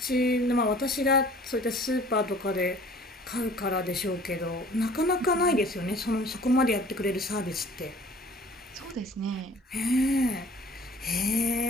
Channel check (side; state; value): both; normal; correlation 0.50